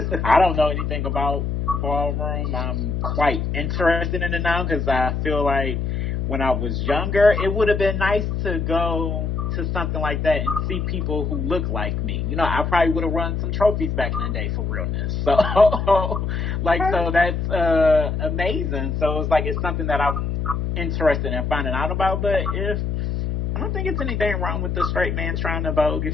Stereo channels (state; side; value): noise; left; hum, 1 dB below the sound